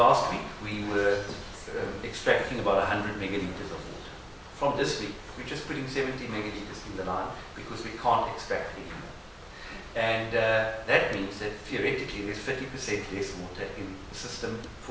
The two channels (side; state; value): both; identical; correlation 1.00